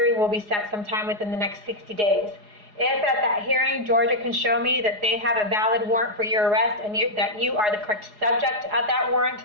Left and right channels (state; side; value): late; left; 4.8 ms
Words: will be set sometime within the next 60 days. If at that hearing, Georgia can show me that they have a valid warrant for your arrest and that you are the correct subject of that warrant,